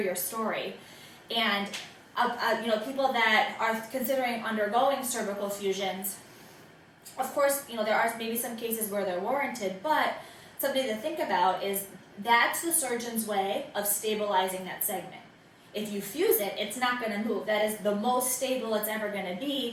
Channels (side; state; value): both; identical; correlation 1.00